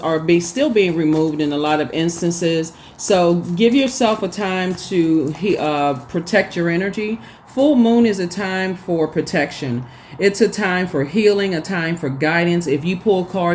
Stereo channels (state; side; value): identical; both; correlation 1.00